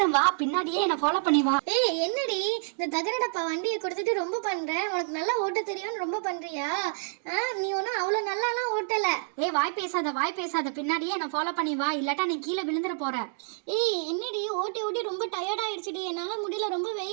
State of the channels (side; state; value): left; silent; digital silence